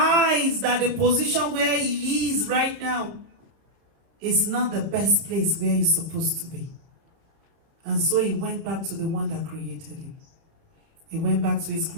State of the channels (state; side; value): late; left; 30 ms